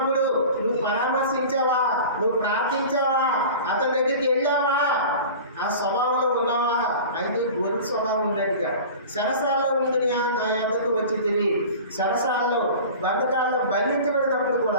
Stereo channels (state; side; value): inverted; both; correlation -0.37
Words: నువ్వు పరామర్శించావా? నువ్వు ప్రార్థించావా? అతని దగ్గరికి వెళ్ళావా? ఆ స్వభావంలో ఉన్నావా? అయితే గొర్రె స్వభావం ఉన్నట్టుగా సరసాల్లో ఉండినా నా యొద్దకు వచ్చి తిని సరసాల్లో బంధకాల్లో బంధించబడినప్పుడు